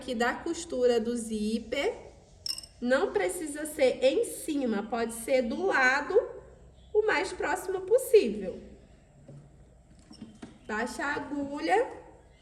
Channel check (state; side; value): identical; both; correlation 1.00